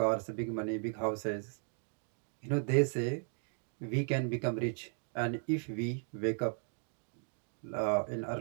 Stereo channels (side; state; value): left; silent; 54 dB below the other